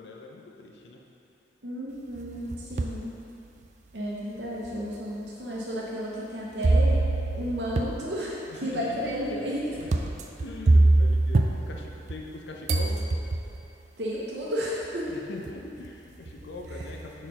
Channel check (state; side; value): normal; both; correlation 0.85